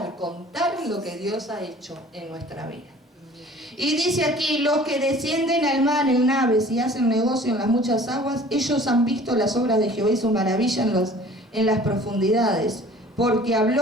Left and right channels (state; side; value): normal; both; correlation 0.49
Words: contar lo que Dios ha hecho en nuestra vida. Y dice aquí, los que descienden al mar en naves y hacen negocio en las muchas aguas, ellos han visto las obras de Jehová y su maravilla en las profundidades, porque